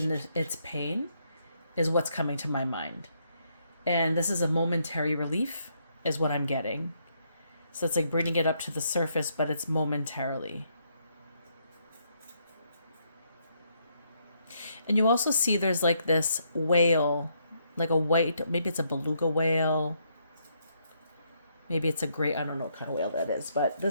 its pain is what's coming to my mind. And this is a momentary relief, is what I'm getting. So it's like bringing it up to the surface, but it's momentarily. And you also see there's like this whale, like a white, maybe it's a beluga whale. Maybe it's a great, I don't know what kind of whale that is, but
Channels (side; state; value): both; inverted; correlation -0.75